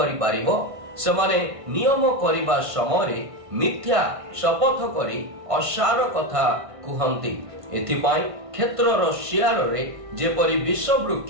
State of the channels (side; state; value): left; late; 1.5 ms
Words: पारिबो? समाने नियम करिबा समय मिथ्या शपथ करी असार कथा कुहंती। एथिपाई क्षेत्रर शियार रे जेपरि विष